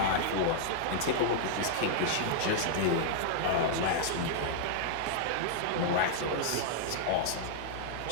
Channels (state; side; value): different; both; correlation -0.01